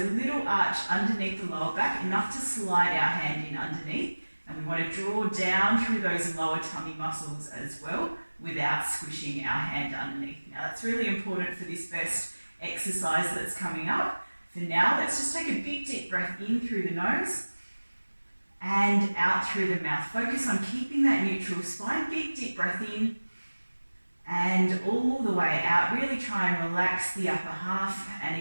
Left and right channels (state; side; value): inverted; both; correlation -1.00